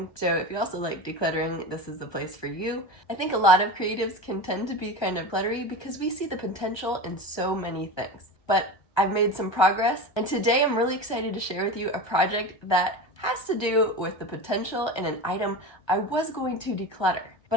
so if you also like decluttering, this is the place for you. I think a lot of creatives can tend to be kind of cluttery because we see the potential in so many things. But I've made some progress, and today I'm really excited to share with you a project that has to do with the potential in an item I was going to declutter.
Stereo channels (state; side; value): late; right; 1.3 ms